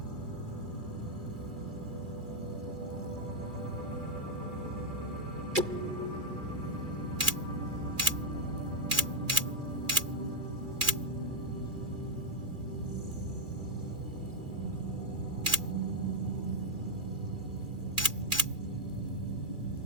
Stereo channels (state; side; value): late; left; 2.3 ms